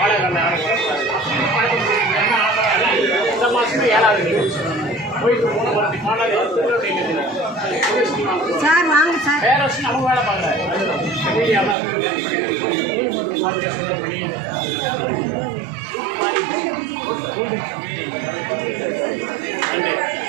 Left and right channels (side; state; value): left; drops out; at 11.8 s